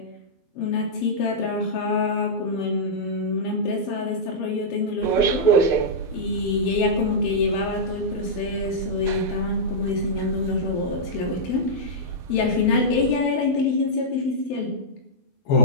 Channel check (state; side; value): late; right; 12 ms